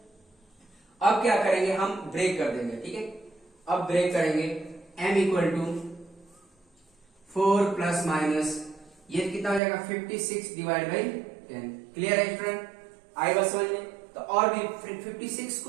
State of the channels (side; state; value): left; drops out; at 9.6 s